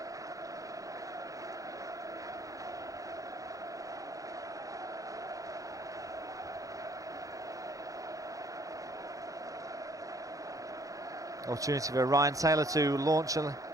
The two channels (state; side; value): late; left; 0.16 ms